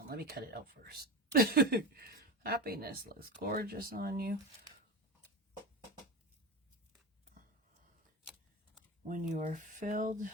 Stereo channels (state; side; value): normal; both; correlation 0.24